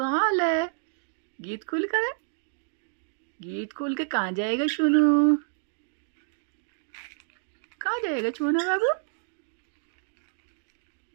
हाल है? गीत खोल कर है? गीत खोल के कहाँ जाएगा चुनू? कहाँ जाएगा चुनू बाबू?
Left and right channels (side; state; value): left; silent; digital silence